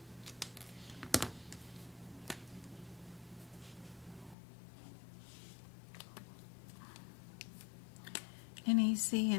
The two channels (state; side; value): drops out; right; at 4.4 s